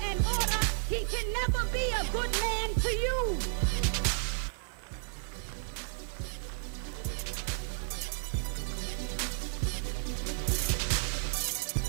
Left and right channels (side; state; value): left; silent; digital silence